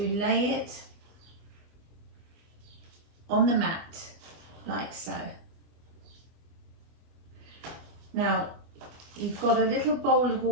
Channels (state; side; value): late; left; 24 ms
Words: lay it on the mat like so. Now you've got a little bowl of